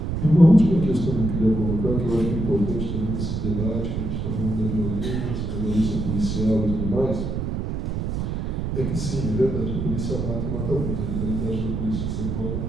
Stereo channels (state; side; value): noise; right; rumble, 2 dB below the sound